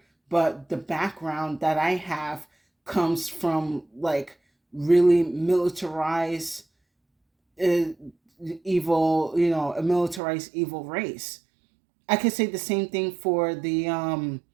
but the background that I have comes from like really militarized, uh, evil, a militarized evil race. I could say the same thing for the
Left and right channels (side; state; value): left; drops out; at 10.2 s